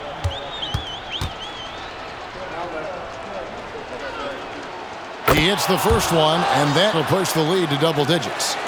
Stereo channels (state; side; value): identical; both; correlation 1.00